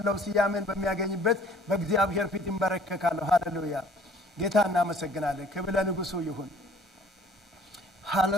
ስያሜን በሚያገኝበት በእግዚአብሔር ፊት እንበረከካለሁ። ሃሌሉያ ጌታ እናመሰግናለን። ክብር ለንጉሱ ይሁን።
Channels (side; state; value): both; normal; correlation 0.54